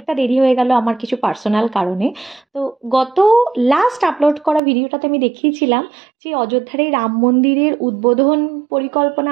দেরি হয়ে গেল আমার কিছু পার্সোনাল কারণে। তো গত লাস্ট আপলোড করা ভিডিওটাতে আমি দেখিয়েছিলাম যে অযোধ্যার এই রাম মন্দিরের উদ্বোধন পরিকল্পনা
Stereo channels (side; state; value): left; drops out; at 4.6 s